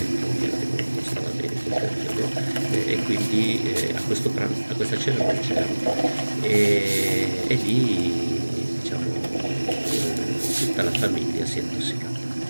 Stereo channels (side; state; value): both; inverted; correlation -1.00